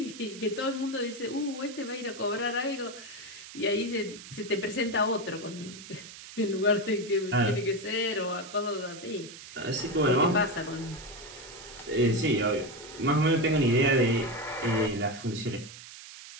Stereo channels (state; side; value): noise; right; hiss, 15 dB below the sound